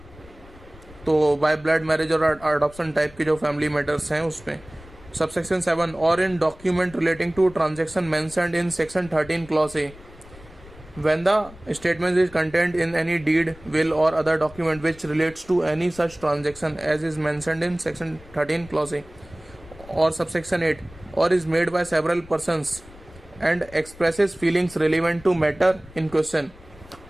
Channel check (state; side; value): noise; left; rumble, 21 dB below the sound